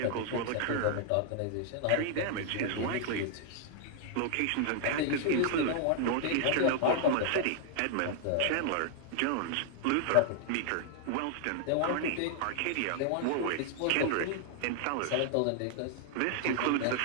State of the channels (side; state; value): both; different; correlation 0.00